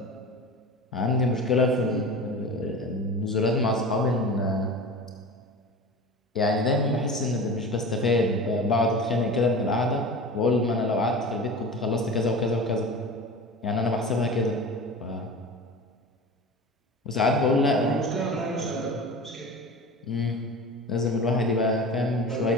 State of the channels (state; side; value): normal; both; correlation 0.33